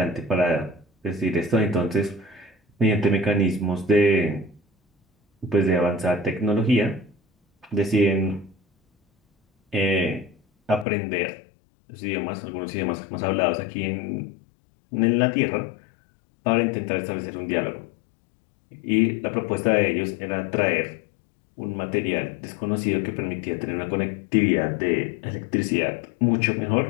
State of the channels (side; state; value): right; drops out; at 10.9 s